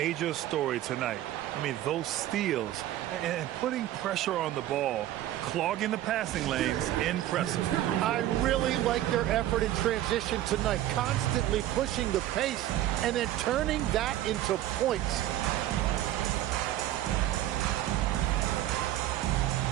story tonight. I mean, those steals and putting pressure on the ball, clogging the passing lanes, impressive. I really like their effort in transition tonight, constantly pushing the pace and then turning that into points.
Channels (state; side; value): quieter; left; 13.5 dB